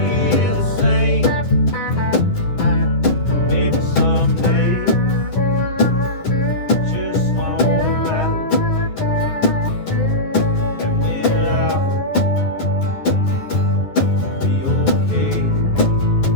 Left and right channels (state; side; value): late; right; 10 ms